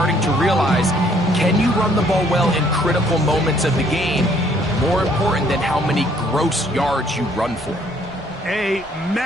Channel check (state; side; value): noise; right; rumble, 23 dB below the sound